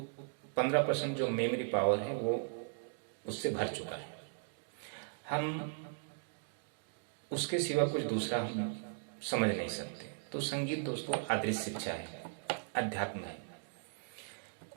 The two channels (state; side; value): silent; left; digital silence